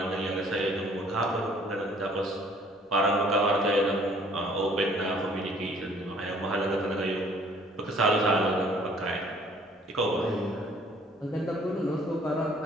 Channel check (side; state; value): both; normal; correlation 0.57